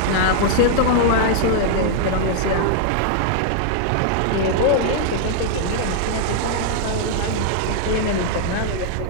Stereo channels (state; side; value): different; both; correlation -0.01